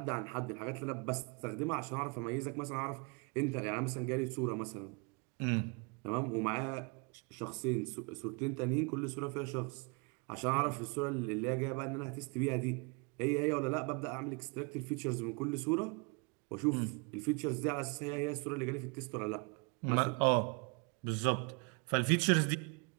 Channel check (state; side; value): quieter; left; 32.7 dB